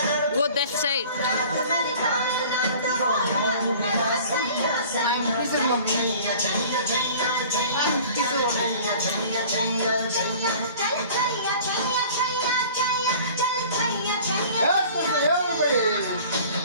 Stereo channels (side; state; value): both; inverted; correlation -0.45